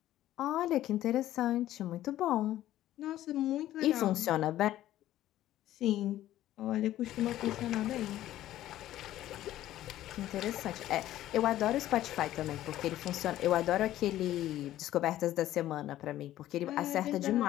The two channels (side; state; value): right; quieter; 13.7 dB